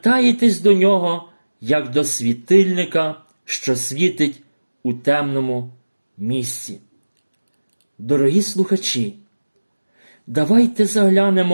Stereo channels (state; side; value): inverted; both; correlation -1.00